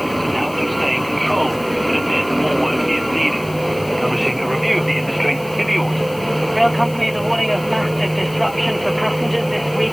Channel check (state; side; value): noise; left; hiss, 19 dB below the sound